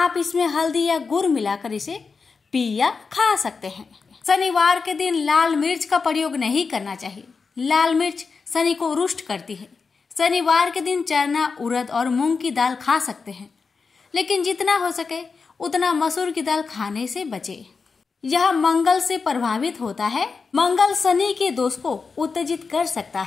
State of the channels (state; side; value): quieter; right; 4.9 dB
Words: इसमें हल्दी या गुड़ मिलाकर इसे पी या खा सकते हैं। शनिवार के दिन लाल मिर्च का प्रयोग नहीं करना चाहिए। लाल मिर्च शनि को रुष्ट करती है। शनिवार के दिन चना, उड़द और मूंग की दाल खा सकते हैं, लेकिन जितना हो सके उतना मसूर की दाल खाने से बचे। यह मंगल से प्रभावित होता है। मंगल शनि के दोष को उत्तेजित कर सकता